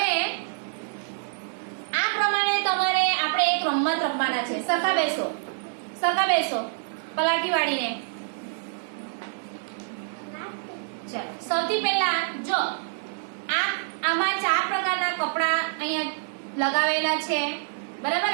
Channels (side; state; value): left; silent; digital silence